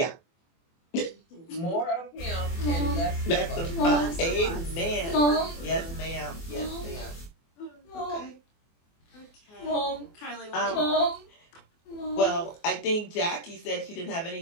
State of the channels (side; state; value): right; late; 24 ms